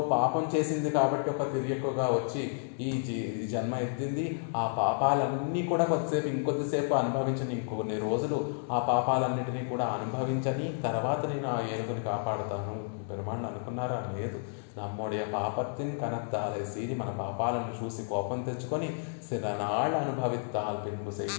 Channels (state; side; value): silent; right; digital silence